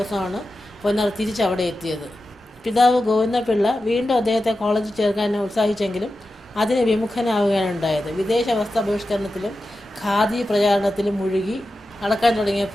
പൊന്നറ തിരിച്ചവിടെ എത്തിയത്. പിതാവ് ഗോവിന്ദപിള്ള വീണ്ടും അദ്ദേഹത്തെ കോളേജിൽ ചേർക്കാൻ ഉത്സാഹിച്ചെങ്കിലും അതിന് വിമുഖനാവുകയാണ് ഉണ്ടായത്. വിദേശ വസ്ത്ര ബഹിഷ്കരണത്തിലും ഖാദി പ്രചാരണത്തിലും മുഴുകി നടക്കാൻ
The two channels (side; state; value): both; normal; correlation 0.92